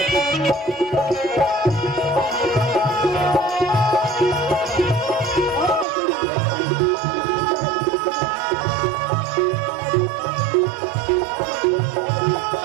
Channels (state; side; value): drops out; left; at 5.9 s